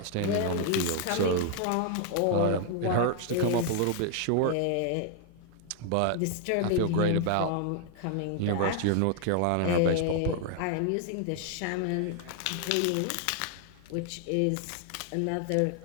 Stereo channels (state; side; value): different; both; correlation 0.00